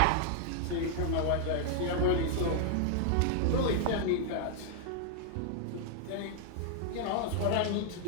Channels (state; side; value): different; both; correlation 0.00